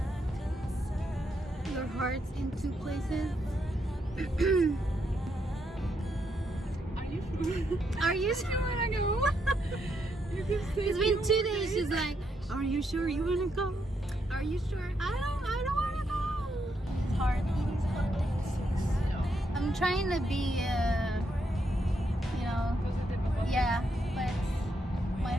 your hearts in two places. Are you you sure? Are you sure you wanna go? It's been 2 days. She's like, are you sure you wanna go? Are you sure? I don't wanna go. It's hard. I'm trying to be, you know, yeah, but my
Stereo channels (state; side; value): normal; both; correlation 0.78